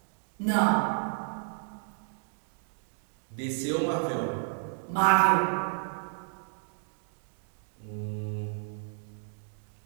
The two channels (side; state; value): left; silent; digital silence